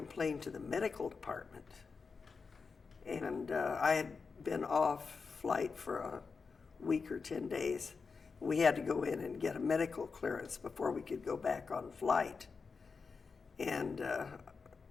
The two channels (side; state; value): right; quieter; 4.9 dB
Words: to the medical department. And I had been off flight for a week or 10 days. We had to go in and get a medical clearance before we could go back on flight. And,